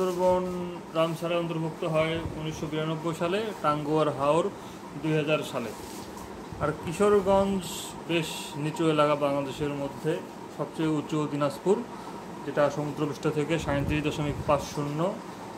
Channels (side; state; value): both; identical; correlation 1.00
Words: রামসারে অন্তর্ভুক্ত হয় 1992 সালে, টাঙ্গুয়ার হাওর 2000 সালে। আর কিশোরগঞ্জ বেশ নিচু এলাকা বাংলাদেশের মধ্যে, সবচেয়ে উঁচু দিনাজপুর, যেটা সমুদ্রপৃষ্ঠ থেকে 37.50